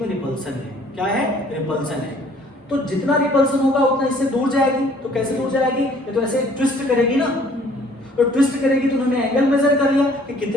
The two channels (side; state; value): both; normal; correlation 0.57